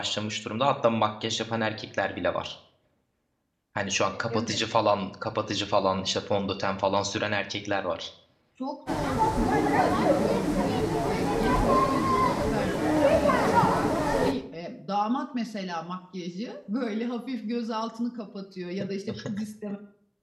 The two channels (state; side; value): identical; both; correlation 1.00